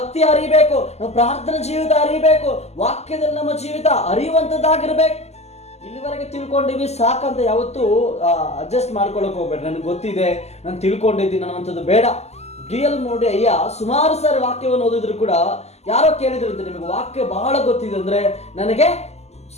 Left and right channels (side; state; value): right; late; 0.31 ms